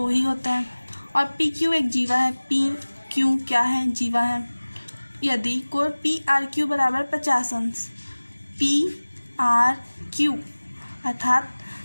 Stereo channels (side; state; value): both; inverted; correlation -1.00